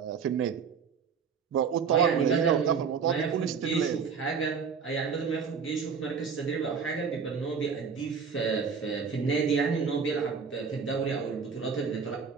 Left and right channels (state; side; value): quieter; left; 6.1 dB